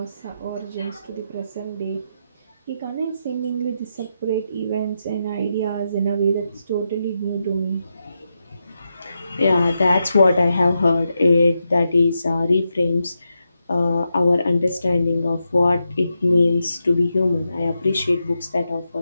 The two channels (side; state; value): both; inverted; correlation -0.86